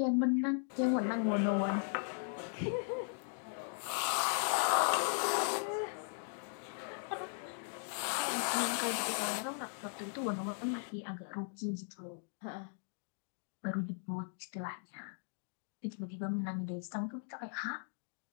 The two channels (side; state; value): right; silent; 52 dB below the other